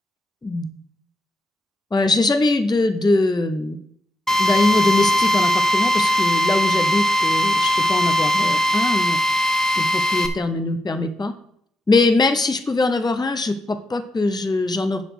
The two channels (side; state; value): both; normal; correlation 0.85